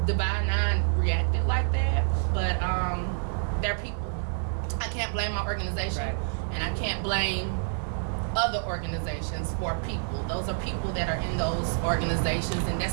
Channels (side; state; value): left; silent; digital silence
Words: Divine Nine reacted like that. But they're people. I can't blame my organization, and I can't blame other organizations for people. Those are people that are in those organizations, and